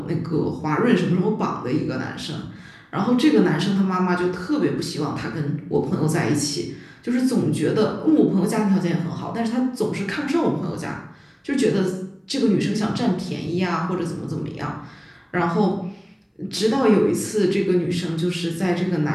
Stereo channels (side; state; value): both; identical; correlation 1.00